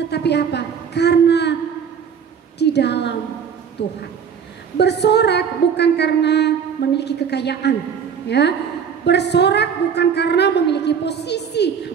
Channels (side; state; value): left; quieter; 7.1 dB